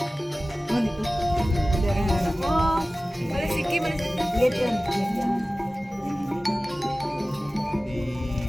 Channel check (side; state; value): both; normal; correlation 0.97